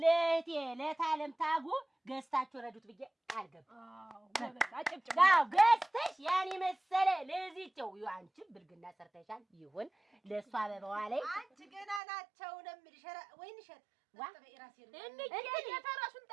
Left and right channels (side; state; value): left; drops out; at 12.0 s